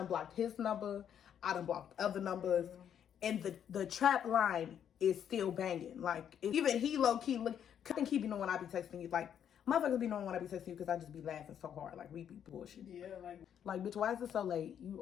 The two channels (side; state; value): right; quieter; 9.0 dB